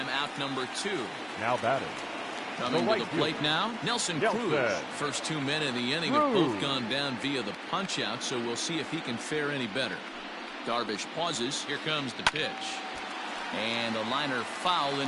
out number 2. Now batting. Coming to the plate now, Nelson Cruz. First 2 men in the inning have both gone down via the punch-out, so we'll see if he can fare any better. Darvish pauses. Here comes the pitch. And a liner foul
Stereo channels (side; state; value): both; identical; correlation 1.00